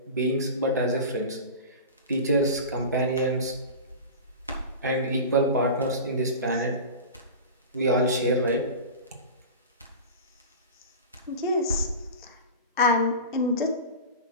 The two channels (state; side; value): inverted; both; correlation -0.30